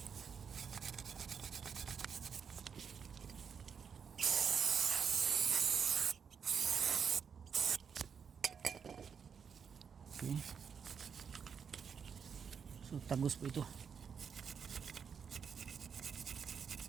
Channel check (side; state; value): left; quieter; 6.7 dB